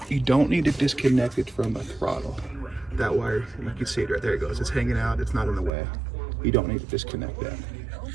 You don't need to disconnect it from the throttle. That wire, you can see it right there, it goes. It's hanging out, it's not in the way. You don't need to disconnect that.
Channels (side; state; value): left; drops out; at 5.7 s